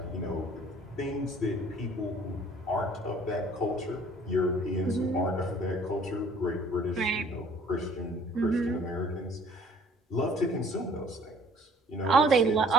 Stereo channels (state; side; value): normal; both; correlation 0.55